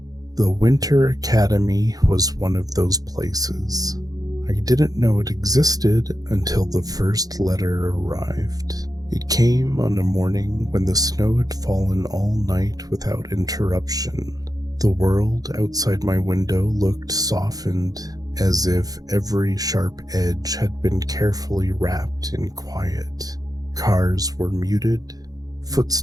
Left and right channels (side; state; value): left; late; 0.18 ms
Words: The Winter Academy was one of those places. I didn't know it existed until the first letter arrived. It came on a morning when the snow had fallen all night without interruption. The world outside my window looked softened, as if every sharp edge had been carefully wrapped in quiet. Cars were muted,